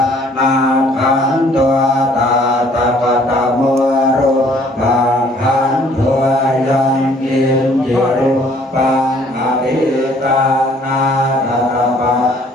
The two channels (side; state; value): both; normal; correlation 0.59